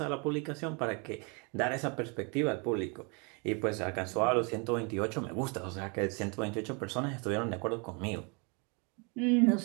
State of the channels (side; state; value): left; quieter; 33.0 dB